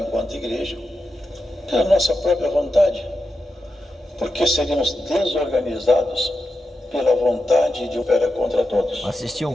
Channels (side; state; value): both; normal; correlation 0.89